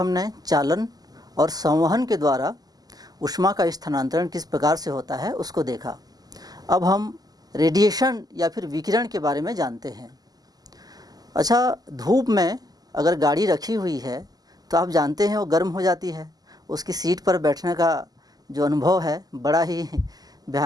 चालन और संवहन के द्वारा ऊष्मा का स्थानांतरण किस प्रकार से होता है उसको देखा। अब हम रेडिएशन या फिर विकिरण के बारे में जानते हैं। अच्छा, धूप में अगर गाड़ी रखी हुई है तो आप जानते हैं वो गर्म हो जाती है। उसकी सीट पर बैठने का जो अनुभव है बड़ा ही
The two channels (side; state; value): left; late; 0.18 ms